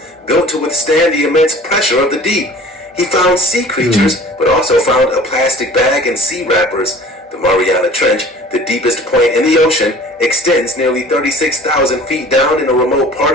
built to withstand the immense pressure of the deep. He found sea creatures, but also found a plastic bag and sea wrappers. The Mariana Trench, the deepest point in the ocean, extends nearly 36,000 feet down in a remote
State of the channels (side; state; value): both; normal; correlation 0.46